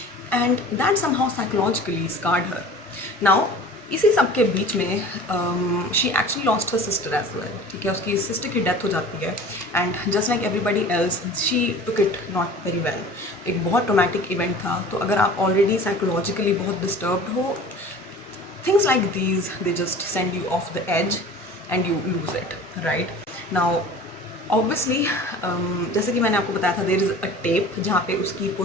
and that somehow psychologically scarred her. Now इसी सब के बीच में she actually lost her sister as well. ठीक है, उसकी सिस्टर की डेथ हो जाती है, and just like everybody else she took it not very well. एक बहुत ट्रोमैटिक इवेंट था, तो अगर आप ऑलरेडी साइकोलॉजिकली बहुत डिस्टर्ब्ड हो, things like these they just send you off the edge and you lose it, right. Now obviously जैसे कि मैंने आपको बताया था, देयर इज़ अ टेप जहाँ पे उसकी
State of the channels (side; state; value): both; normal; correlation 0.42